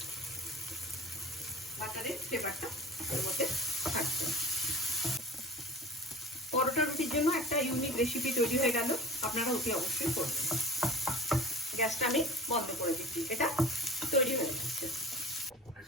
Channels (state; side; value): normal; both; correlation 0.39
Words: বাটারের ফ্লেভারটা এর মধ্যে থাকছে। পরোটা রুটির জন্য একটা ইউনিক রেসিপি তৈরি হয়ে গেল। আপনারা অতি অবশ্যই করবেন। গ্যাসটা আমি বন্ধ করে দিচ্ছি। এটা তৈরি হয়ে যাচ্ছে।